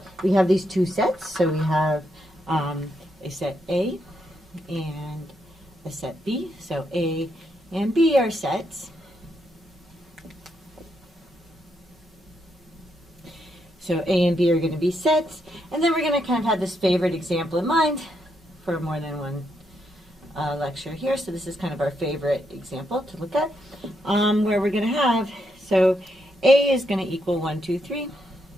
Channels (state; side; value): normal; both; correlation 0.79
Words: these two sets. So we have a set A and a set B. So A and B are sets. So A and B are going to be sets, and then we're going to kind of have this favorite example in mind for more than one lecture here. So this is kind of our favorite example to look at, where we're going to have, so A is going to equal 1, 2, 3,